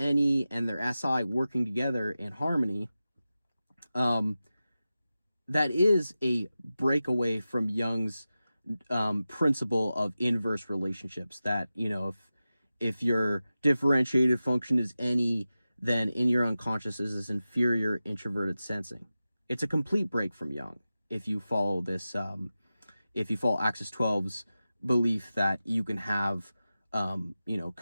and their SI working together in harmony. That is a breakaway from Jung's principle of inverse relationships, that, if your differentiated function is NE, then in your unconscious is this inferior introverted sensing. It's a complete break from Jung if you follow this, if you follow Axis 12's belief that you can have,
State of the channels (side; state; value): both; inverted; correlation -0.94